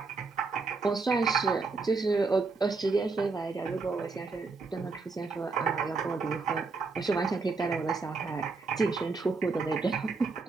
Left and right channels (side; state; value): left; quieter; 4.2 dB